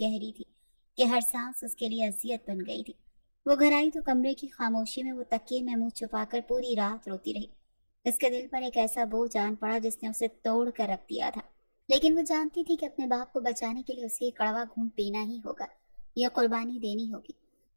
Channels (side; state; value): both; inverted; correlation -1.00